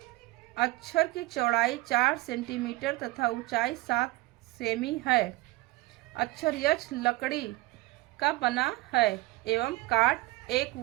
अक्षर की चौड़ाई 4 सेंटीमीटर तथा ऊंचाई 7 सेमी है। अक्षर यच लकड़ी का बना है एवं काट 1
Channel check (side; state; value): left; quieter; 19.4 dB